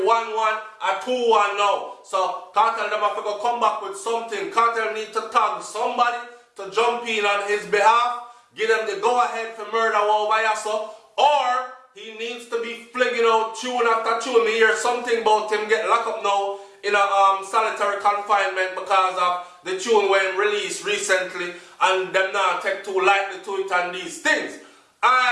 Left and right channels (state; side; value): identical; both; correlation 1.00